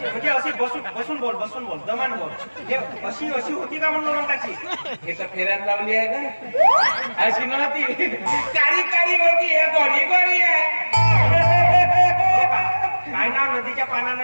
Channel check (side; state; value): both; inverted; correlation -1.00